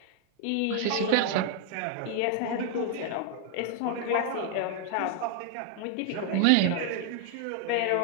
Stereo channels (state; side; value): different; both; correlation 0.00